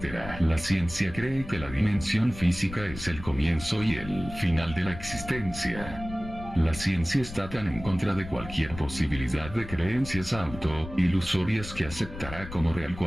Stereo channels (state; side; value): noise; left; rumble, 12 dB below the sound